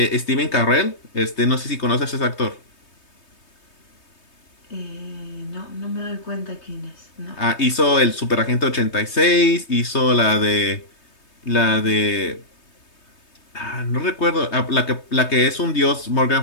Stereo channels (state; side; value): late; right; 3.2 ms